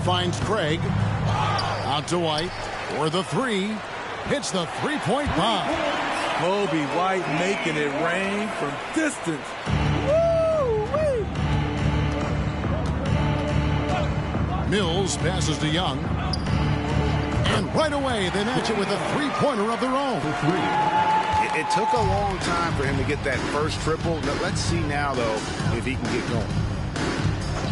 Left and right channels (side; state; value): both; identical; correlation 1.00